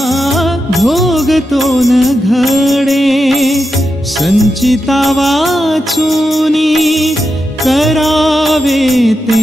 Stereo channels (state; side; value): normal; both; correlation 0.87